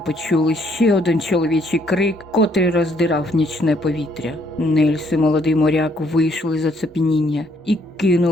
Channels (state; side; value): normal; both; correlation 0.68